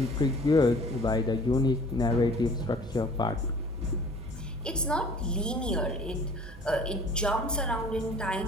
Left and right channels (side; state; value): both; normal; correlation 0.50